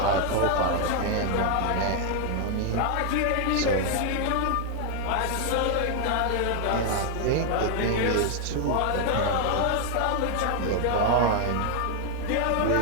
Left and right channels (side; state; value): both; different; correlation 0.00